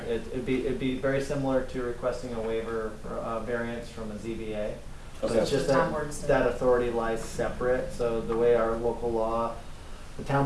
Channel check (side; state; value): both; identical; correlation 1.00